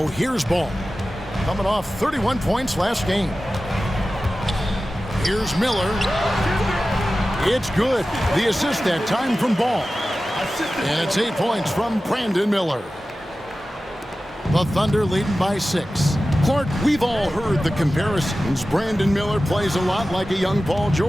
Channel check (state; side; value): normal; both; correlation 0.95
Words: here's Ball. Coming off 31 points last game. Here's Miller. It's good. The assist that time from Ball. And it's 8 points from Brandon Miller. The Thunder leading by 6. Clark, we've all heard the comparisons. Brandon Miller plays a lot like a young Paul